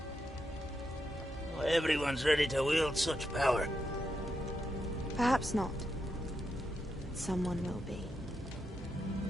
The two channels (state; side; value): normal; both; correlation 0.84